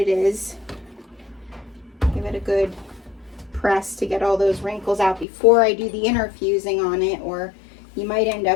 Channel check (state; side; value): drops out; right; at 5.2 s